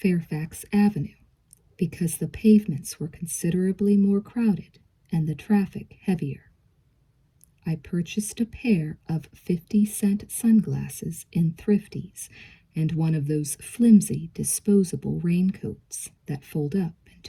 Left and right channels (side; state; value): both; identical; correlation 1.00